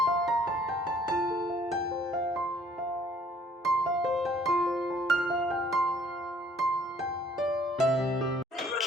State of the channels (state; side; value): normal; both; correlation 0.59